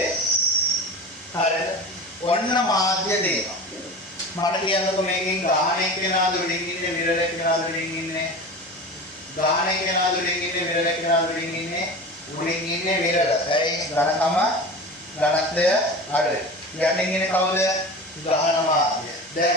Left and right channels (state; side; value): normal; both; correlation 0.32